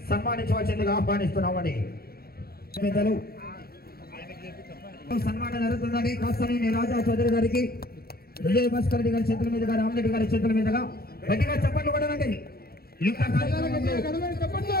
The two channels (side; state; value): right; late; 0.44 ms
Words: సన్మానించవలసిందిగా ఆహ్వానిస్తున్నామని పెద్దలు సన్మానం జరుగుతుందని కాస్తనేని రాజా చౌదరి గారికి, విజయ్ భాస్కర్ రెడ్డి గారి చేతుల మీదుగా, రామరెడ్డి గారి చేతుల మీదుగా గట్టిగా చప్పట్లు కొట్టండి.